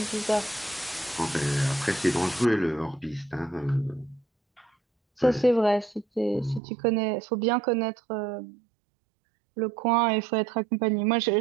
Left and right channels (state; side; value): drops out; left; at 6.6 s